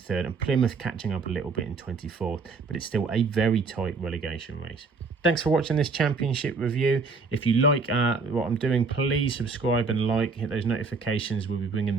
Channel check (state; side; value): quieter; left; 4.4 dB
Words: and Plymouth catching up a little bit in 24th, but it's still a very tight relegation race. Thanks for watching this Championship review. If you like what I'm doing, please subscribe and like, hit those notifications. We'll be bringing